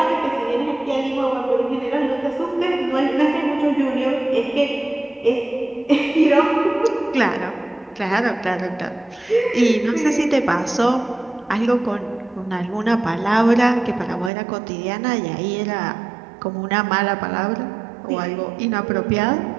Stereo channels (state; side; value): drops out; left; at 14.3 s